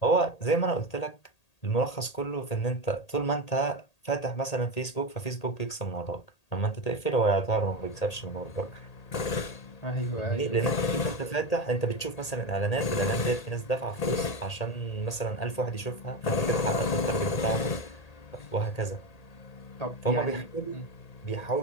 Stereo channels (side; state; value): right; late; 1.8 ms